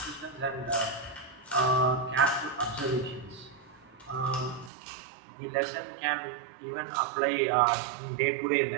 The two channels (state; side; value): drops out; left; at 4.7 s